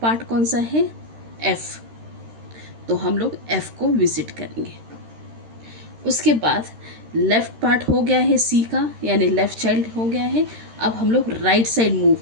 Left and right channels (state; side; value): late; left; 13 ms